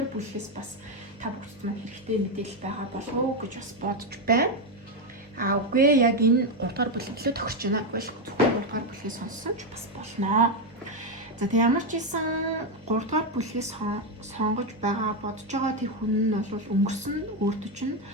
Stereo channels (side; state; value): both; normal; correlation 0.06